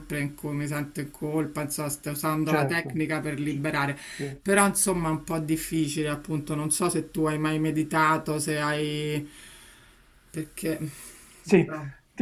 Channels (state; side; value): identical; both; correlation 1.00